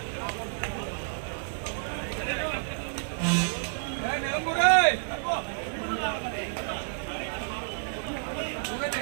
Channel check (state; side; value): silent; left; digital silence